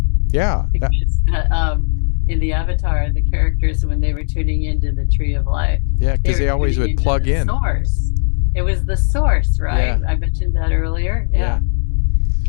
Yeah. Because, in the Avatar, the characters, when they were tuning into the Tree of Life, because they always would plug in. Source. It was the source, right? I mentioned that earlier. Yeah.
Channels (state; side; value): silent; right; digital silence